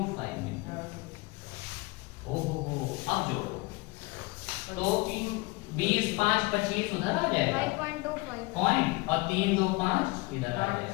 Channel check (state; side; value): quieter; right; 24.3 dB